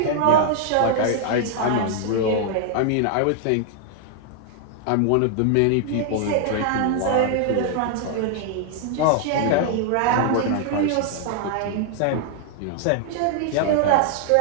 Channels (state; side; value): different; both; correlation 0.00